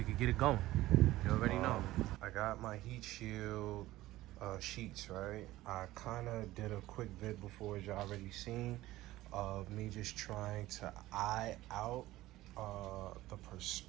could get it going. You already know. I got my heat shield sheets, right? I kind of did a quick vid before, as you already seen, of me just trying to eye out the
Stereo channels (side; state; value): left; quieter; 16.5 dB